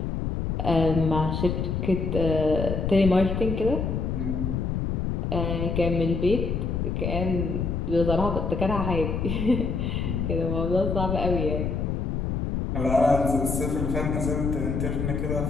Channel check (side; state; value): left; noise; rumble, 1 dB below the sound